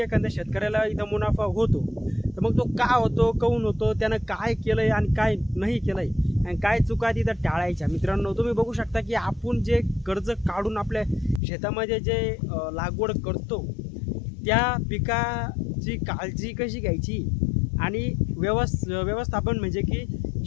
एखाद्या शेतकऱ्याला इथं मुनाफा होतो. तर मग तो का होतो, काहून होतो, त्यानं काय केलंय आणि काय नाही केलंय आणि काय चुका तिथं टाळायच्या. मित्रांनो, तुम्ही बघू शकता की आपण जे कर्ज काढून आपल्या शेतामध्ये जे लागवड करतो त्या पिकाची काळजी कशी घ्यायची आणि व्यवस्थापन म्हणजे की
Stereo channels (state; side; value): drops out; right; at 11.4 s